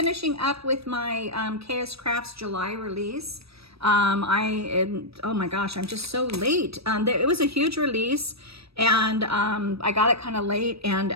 up with my KSCraft's July release. Oh my gosh, I'm just so late. It was a huge release and I got it kind of late, and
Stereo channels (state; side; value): late; left; 0.78 ms